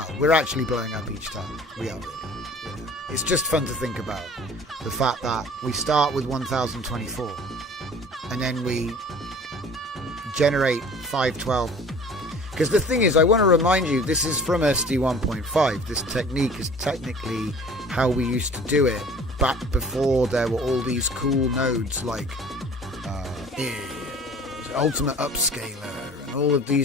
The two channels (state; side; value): normal; both; correlation 0.47